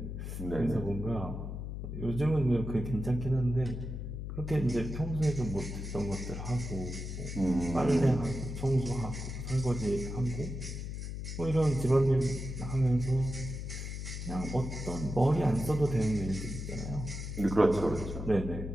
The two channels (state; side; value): noise; left; hum, 6 dB below the sound